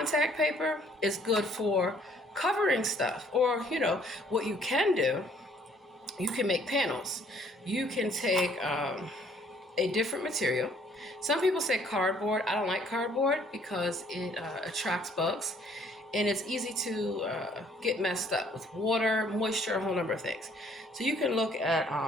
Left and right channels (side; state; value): both; normal; correlation 0.61